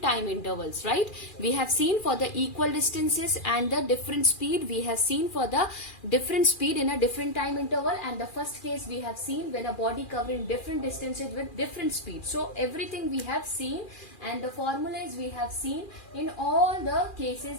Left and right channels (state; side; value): late; right; 2.4 ms